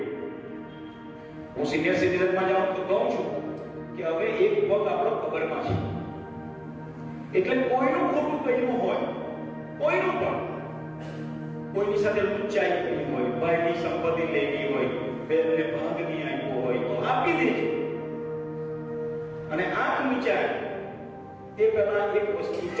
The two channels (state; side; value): identical; both; correlation 1.00